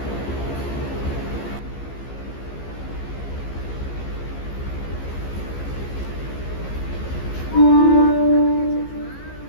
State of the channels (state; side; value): late; right; 15 ms